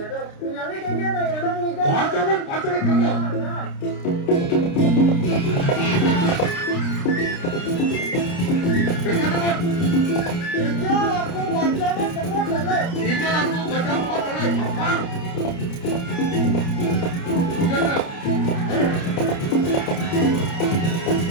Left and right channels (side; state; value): right; late; 29 ms